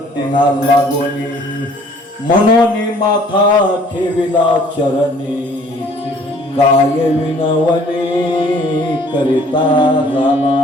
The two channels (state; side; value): normal; both; correlation 0.56